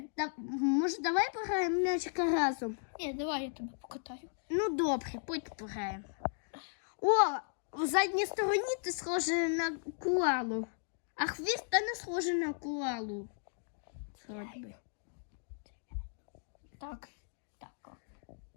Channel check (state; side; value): silent; right; digital silence